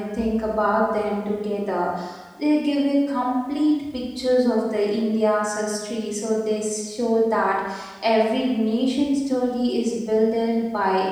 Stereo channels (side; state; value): both; identical; correlation 1.00